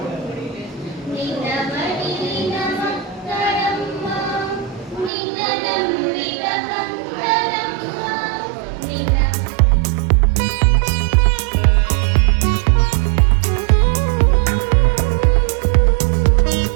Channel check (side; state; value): left; drops out; at 5.1 s